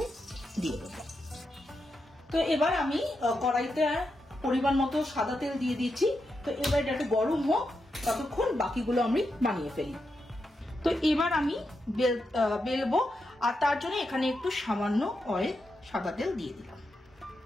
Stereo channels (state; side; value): normal; both; correlation 0.86